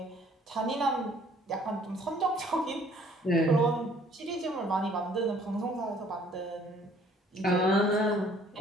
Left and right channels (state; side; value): normal; both; correlation 0.58